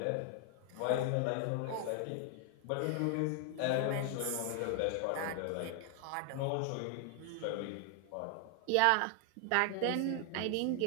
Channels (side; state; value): both; different; correlation 0.00